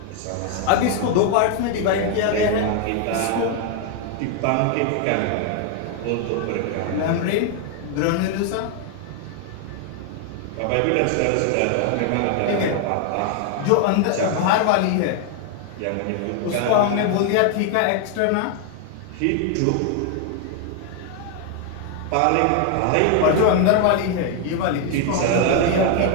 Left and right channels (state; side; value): different; both; correlation 0.00